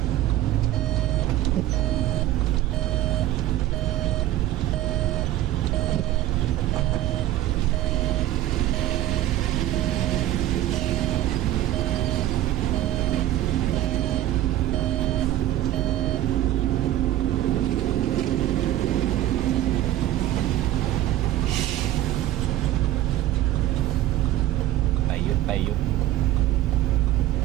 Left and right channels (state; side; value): quieter; left; 13.8 dB